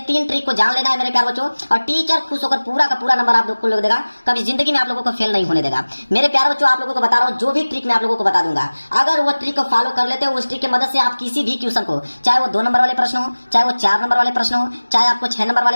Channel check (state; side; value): inverted; both; correlation -1.00